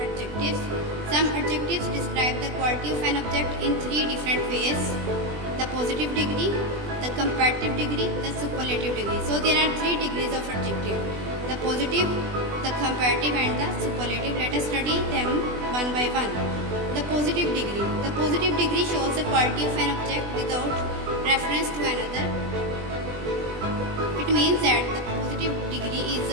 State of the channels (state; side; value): late; left; 20 ms